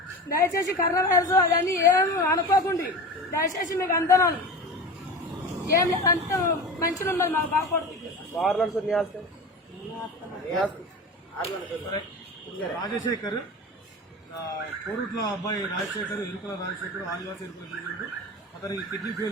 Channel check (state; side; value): normal; both; correlation 0.30